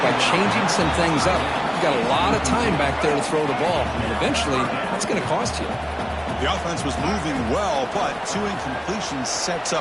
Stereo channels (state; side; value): identical; both; correlation 1.00